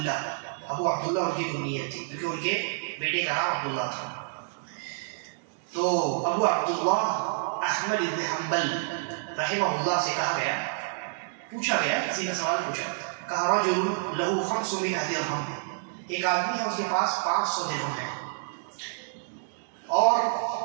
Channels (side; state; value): left; silent; digital silence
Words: ان کی کنیت تھی، کیونکہ ان کے بیٹے کا نام عبداللہ تھا. تو ابو عبداللہ احمد بن حنبل رحمہ اللہ سے کہا گیا، پوچھا گیا، کسی کا سوال پوچھا، کہا رجل لہو 500 درہم، ایک آدمی ہے اس کے پاس 500 درہم ہے، اور